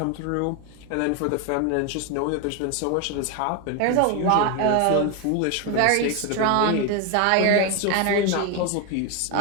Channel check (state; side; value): different; both; correlation 0.01